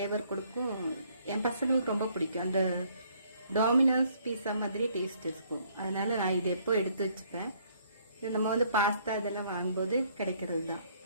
கொடுக்கும். என் பசங்களுக்கு ரொம்ப பிடிக்கும். அந்த டாமினோஸ் பீஸா மாதிரி டேஸ்ட் இருக்கும். அதனால நான் இது எப்போ எடுத்து வச்சுப்பேன். இது நம்ம வந்து பாஸ்தா இதெல்லாம் வாங்கும்போது கிடைக்கிறது தான்.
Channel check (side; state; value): both; inverted; correlation -0.64